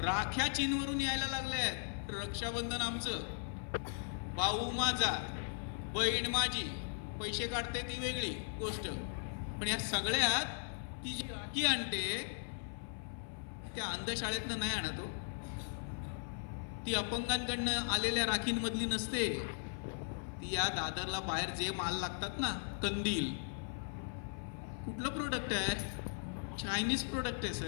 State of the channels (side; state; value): right; silent; 52 dB below the other